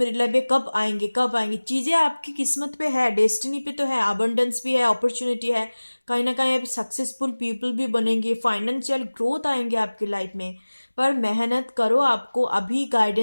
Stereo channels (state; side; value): inverted; both; correlation -1.00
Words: लाइफ में कब आएंगे कब आएंगे। चीज़ें आपकी किस्मत पे है, डेस्टिनी पे तो है, अबंडेंस भी है, अपॉर्चुनिटी है, कहीं ना कहीं आप सक्सेसफुल पीपल भी बनेंगे, फाइनेंशियल ग्रोथ आएंगे आपकी लाइफ में। पर मेहनत करो, आपको अभी